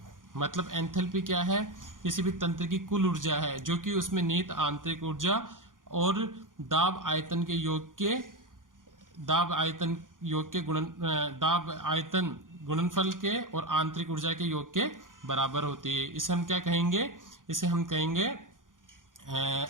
मतलब एंथैल्पी क्या है? किसी भी तंत्र की कुल ऊर्जा है जो कि उसमें निहित आंतरिक ऊर्जा और दाब आयतन गुणनफल के और आंतरिक ऊर्जा के योग के बराबर होती है। इसे हम क्या कहेंगे? इसे हम कहेंगे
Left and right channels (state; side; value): late; left; 0.89 ms